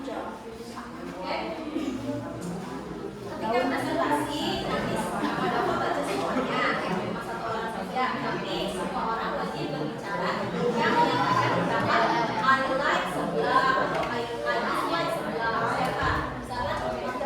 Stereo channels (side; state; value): both; identical; correlation 1.00